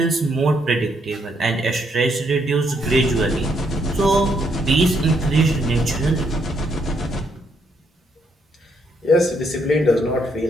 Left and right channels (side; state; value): both; normal; correlation 0.74